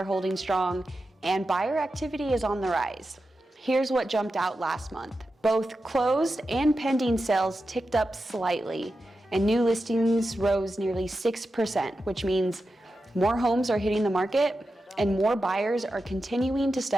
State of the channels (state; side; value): normal; both; correlation 0.91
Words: holding strong, and buyer activity is on the rise. Here's what jumped out last month. Both closed and pending sales ticked up slightly, and new listings rose nearly 6%, which means more homes are hitting the market and more buyers are continuing to